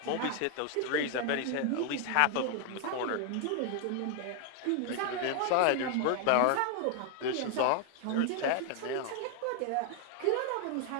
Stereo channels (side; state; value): both; different; correlation 0.00